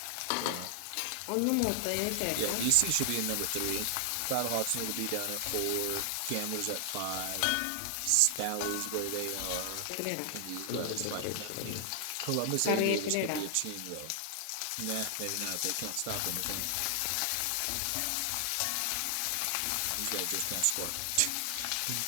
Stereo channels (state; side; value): different; both; correlation 0.00